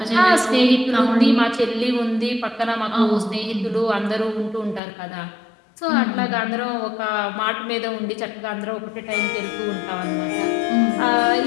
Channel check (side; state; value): right; drops out; at 4.8 s